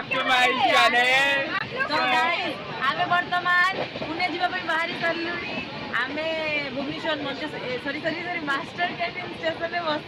to my channel. तो गाइस आमे वर्तमान पुणे जीवा पई बाहरी सरलुनी. आमे Bhubaneswar sorry master canteen station में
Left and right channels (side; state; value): both; identical; correlation 1.00